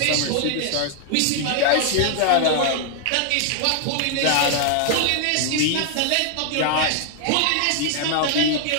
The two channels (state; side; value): different; both; correlation 0.00